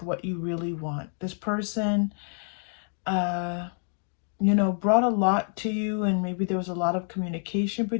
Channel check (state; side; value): silent; right; 59 dB below the other